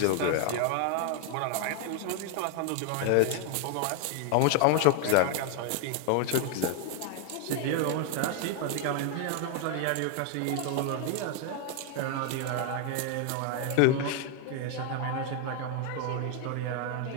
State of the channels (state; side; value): different; both; correlation 0.00